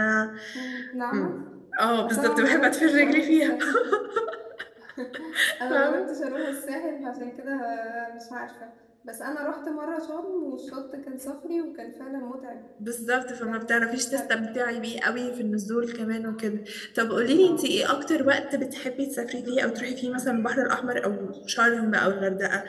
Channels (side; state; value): both; identical; correlation 1.00